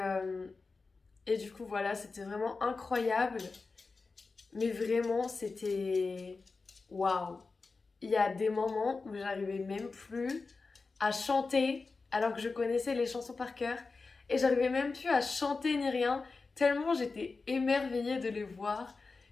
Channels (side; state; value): right; quieter; 4.1 dB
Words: du coup, voilà, c'était vraiment incroyable. Mais vraiment, c'était... Waouh! Il y a des moments où j'arrivais même plus à chanter, alors que je connaissais les chansons par cœur. Et j'arrivais même plus à chanter ni rien, tellement j'étais émerveillée de les voir.